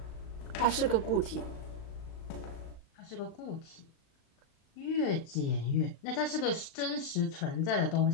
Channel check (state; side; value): late; right; 36 ms